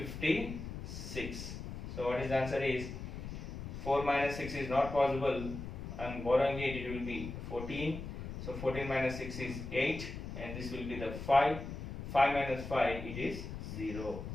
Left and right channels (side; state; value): left; noise; rumble, 8 dB below the sound